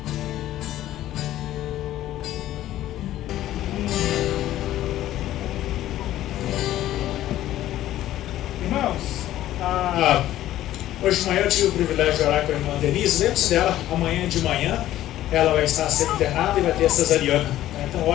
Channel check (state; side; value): quieter; right; 13.7 dB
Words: Irmãos, hoje de manhã eu tive o privilégio de orar com a irmã Denise. Lembre-se dela, amanhã de manhã ela vai estar sendo internada e vai ter cesariana. Então